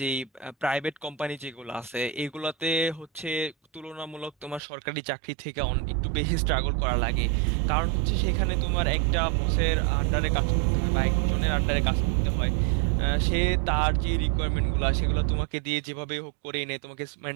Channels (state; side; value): drops out; left; at 4.6 s